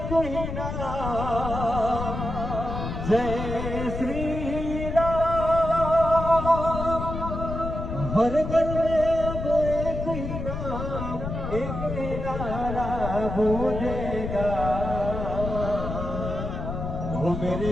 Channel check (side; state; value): left; noise; rumble, 5 dB below the sound